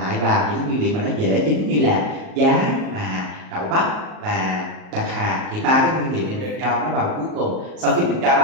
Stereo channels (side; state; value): left; late; 38 ms